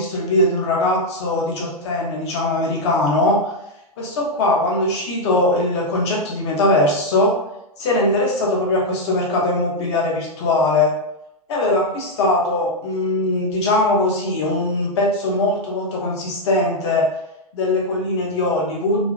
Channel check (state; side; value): normal; both; correlation -0.01